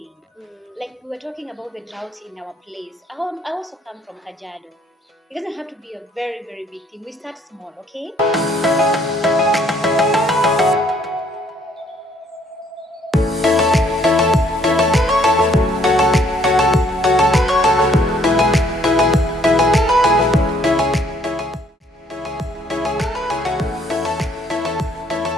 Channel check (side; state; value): both; normal; correlation 0.65